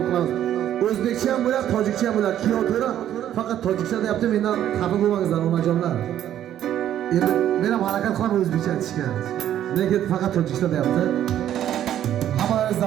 qilamiz. O'zbekcha ham bo'ladi, tojikcha ham bo'ladi. Piyotra faqat tojikcha deyapti, mendan xafa bo'lmangizlar onajonlar. Endi men ham harakat qilaman o'zbekcha aytishga. Lekin faqat tojikcha deyapti. Hammamiz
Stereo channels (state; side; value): quieter; left; 11.2 dB